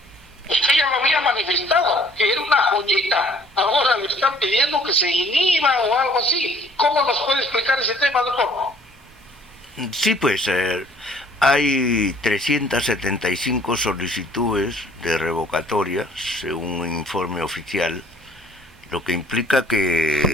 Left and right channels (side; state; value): both; normal; correlation 0.57